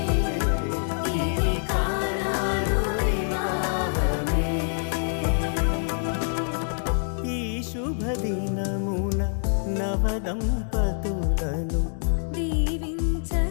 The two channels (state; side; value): silent; right; digital silence